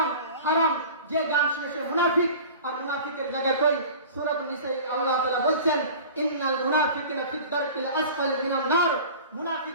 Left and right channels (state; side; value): inverted; both; correlation -0.40